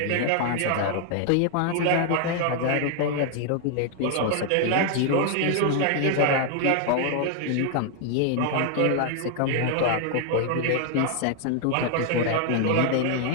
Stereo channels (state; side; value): different; both; correlation 0.00